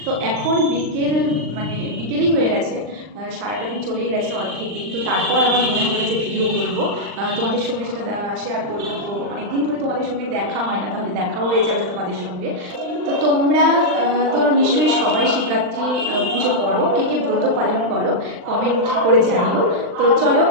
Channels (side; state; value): left; late; 39 ms